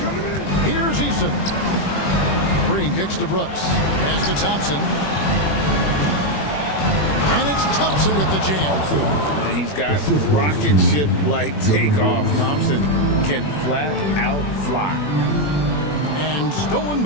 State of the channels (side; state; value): right; late; 21 ms